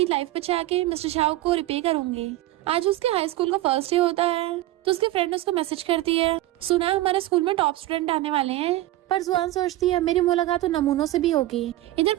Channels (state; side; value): quieter; left; 16.1 dB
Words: लाइफ बचा के मिस्टर झाओ को रिपे करूंगी। आज उसके हाई स्कूल का फर्स्ट डे होता है, तो उसके फ्रेंड उसको मैसेज करती है सुना हमारे स्कूल में टॉप स्टूडेंट आने वाले हैं। पर जुआन सोचती है मेरी मुलाकात तो नमूनों से भी होगी। इधर